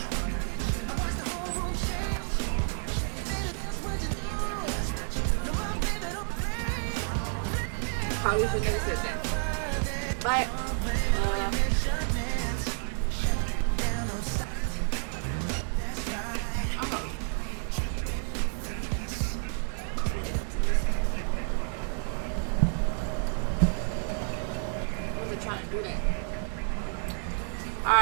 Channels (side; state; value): left; silent; 57 dB below the other